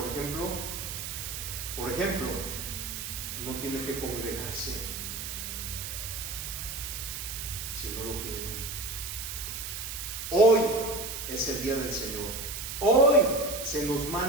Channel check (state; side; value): noise; right; hiss, 6 dB below the sound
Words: ejemplo, no tiene que congregarse si no lo quieren. Hoy es el día del Señor. Hoy se nos